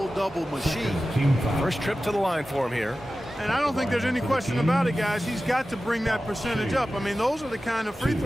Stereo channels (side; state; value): both; normal; correlation 0.95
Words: machine. First trip to the line for him here. And I don't think there's any question about it, guys. He's got to bring that percentage up. I mean, those are the kind of free